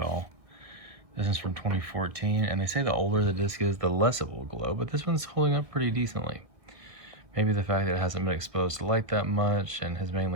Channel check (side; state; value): left; late; 1.6 ms